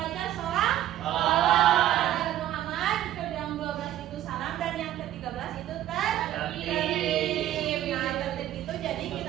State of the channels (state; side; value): quieter; left; 12.8 dB